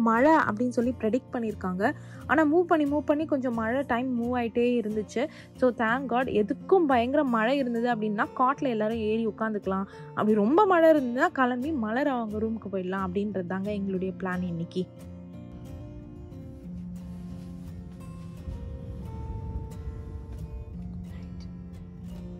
மழை அப்படின்னு சொல்லி ப்ரெடிக்ட் பண்ணியிருக்காங்க. ஆனால் மூவ் பண்ணி கொஞ்சம் மழை டைம் மூவ் ஆகிட்டே இருந்துச்சு. So thank God. எதுக்கும் பயங்கர மழை இருந்தது அப்படின்னா காட்டில் எல்லோரும் ஏறி உட்காந்துக்கலாம். அப்படி ரொம்ப மழை இருந்ததுன்னா கிளம்பி மலர் அவங்க ரூமுக்கு போயிடலாம் அப்படின்றது தாங்க எங்களுடைய பிளான் இன்னைக்கு.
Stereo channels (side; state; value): both; identical; correlation 1.00